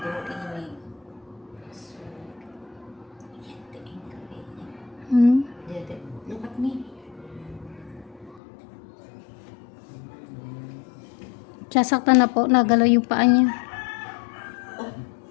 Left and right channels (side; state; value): right; drops out; at 8.4 s